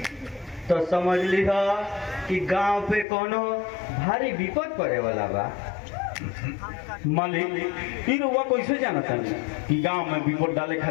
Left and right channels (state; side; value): drops out; right; at 3.1 s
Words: तो समझ लीह कि गांव पे कोनो भारी विपद पड़े वाला बा। मालिक, फिर वो कैसे जानता कि गांव में विपद डाले